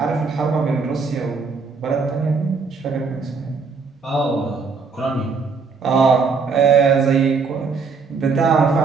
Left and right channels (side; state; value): left; quieter; 4.9 dB